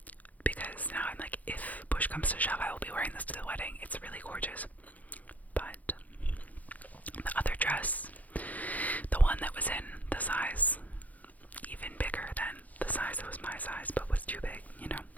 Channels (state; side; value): late; right; 0.077 ms